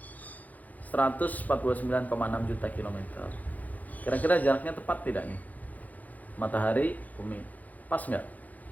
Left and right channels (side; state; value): right; late; 0.079 ms